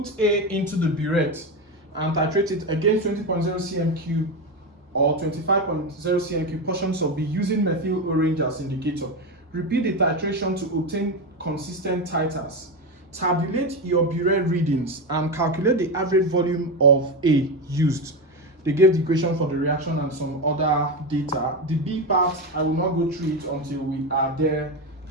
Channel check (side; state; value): both; normal; correlation 0.15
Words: A into the burette and titrate it against 20.0 cm cube or 25.0 cm cube portions of B using methyl orange as indicator. Repeat the titration to obtain consistent titers. Tabulate your burette readings and calculate the average volume of A used. They gave the equation for the reaction and some other data. The B part, I will not go through it until we are there